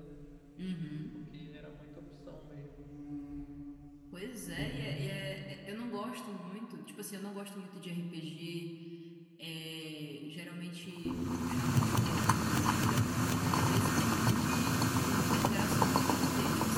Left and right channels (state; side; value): identical; both; correlation 1.00